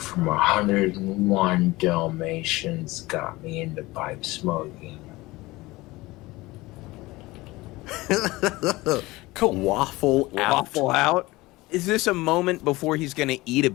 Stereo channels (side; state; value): right; quieter; 20.4 dB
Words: 101 Dalmatians got me into pipe smoking. Cool. Waffle Out. Is this a moment before he's going to eat a